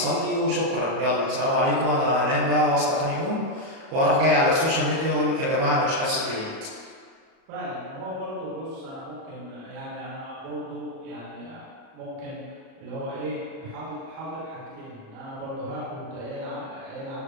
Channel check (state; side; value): late; left; 37 ms